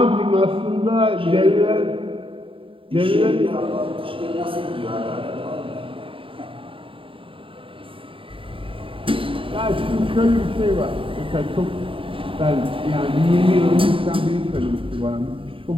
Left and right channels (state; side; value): late; left; 0.26 ms